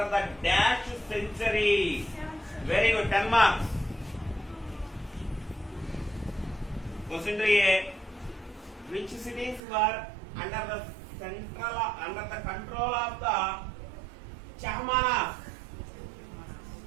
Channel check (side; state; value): left; drops out; at 9.6 s